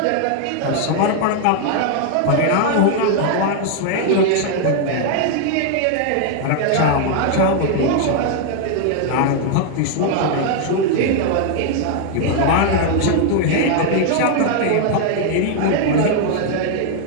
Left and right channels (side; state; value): both; different; correlation 0.00